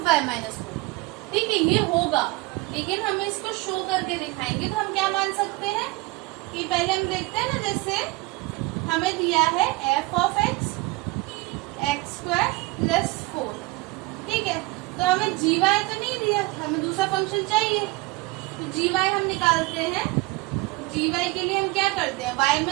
वाई माइनस 4, ठीक है, ये होगा, लेकिन हमें इसको शो करके दिखाएंगे। तो हम क्या मान सकते हैं कि पहले हम देखते हैं ना, जैसे हमें दिया है F of x x square plus 4, ठीक है। तो हमें जी वाई तो नहीं दिया, हमें दूसरा फंक्शन चाहिए। तो जी वाई हम निकालते हैं। जी वाई के लिए हम क्या करते हैं, वाई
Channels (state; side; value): quieter; left; 22.4 dB